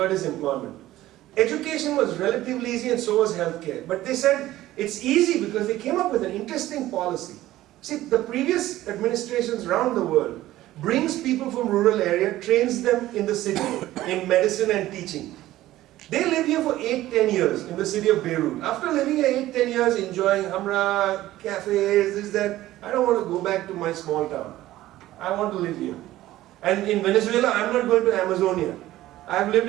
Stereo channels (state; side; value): quieter; left; 15.3 dB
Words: is employment. Education was relatively easy and so was healthcare. But they said it's easy because they came up with an interesting policy. See, the previous administrations around the world brings people from rural area, trains them in the city in medicine and teaching. They live here for 8-10 years in the city of Beirut. After living here 8-10 years, enjoying hamra, cafes, this, that, I don't want to go back to my small town. I want to live here. And in Venezuela, I'm not going to Amazonia. I've lived